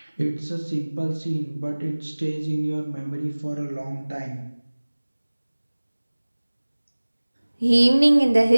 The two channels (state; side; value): inverted; both; correlation -1.00